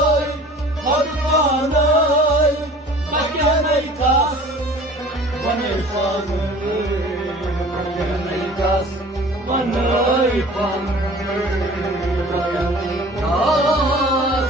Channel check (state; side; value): normal; both; correlation 0.46